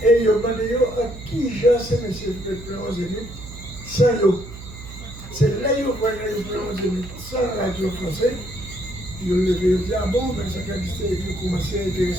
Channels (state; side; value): noise; right; hum, 14 dB below the sound